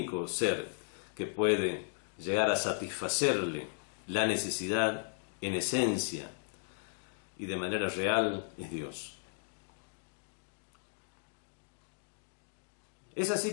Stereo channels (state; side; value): silent; right; digital silence